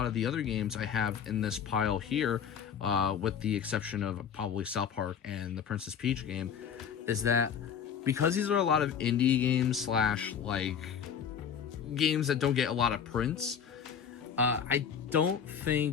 of the other games I have in this pile here, with the exception of probably South Park and the Princess Peach game, is that because these are a lot of indie games slash like games that don't get a lot of prints, I don't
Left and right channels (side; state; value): right; quieter; 7.7 dB